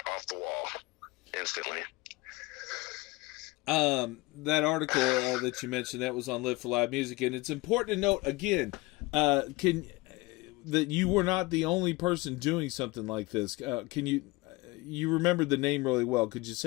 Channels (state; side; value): quieter; right; 22.3 dB